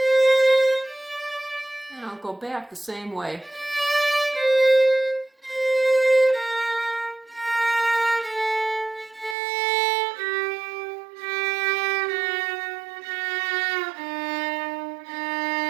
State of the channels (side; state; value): left; drops out; at 9.3 s